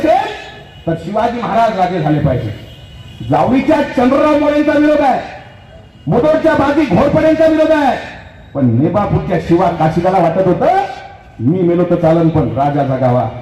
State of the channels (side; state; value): both; identical; correlation 1.00